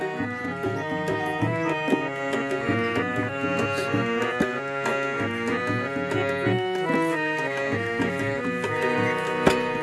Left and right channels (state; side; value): identical; both; correlation 1.00